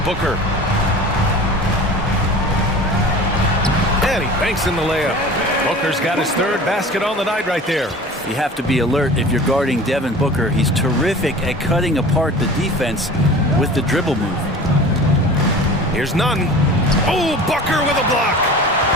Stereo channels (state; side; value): normal; both; correlation 0.39